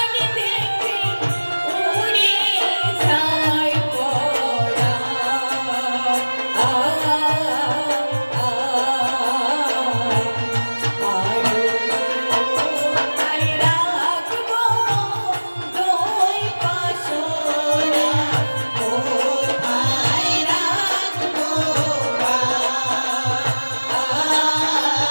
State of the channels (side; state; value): both; inverted; correlation -1.00